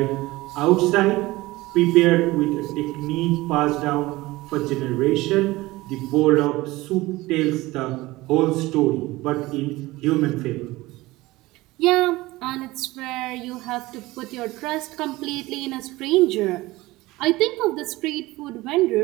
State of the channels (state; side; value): quieter; left; 19.6 dB